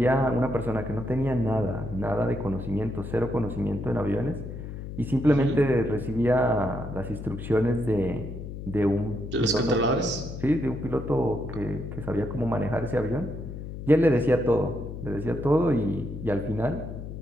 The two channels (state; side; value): noise; left; hum, 9 dB below the sound